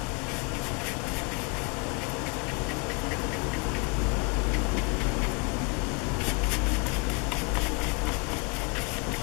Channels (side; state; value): right; quieter; 32.7 dB